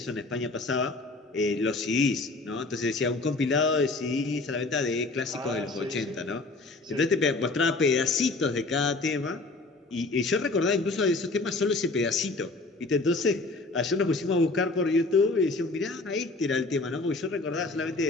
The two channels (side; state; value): right; quieter; 3.3 dB